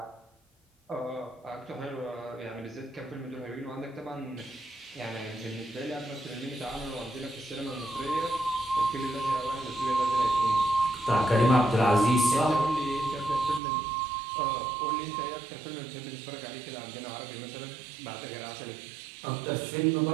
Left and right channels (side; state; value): left; drops out; at 13.6 s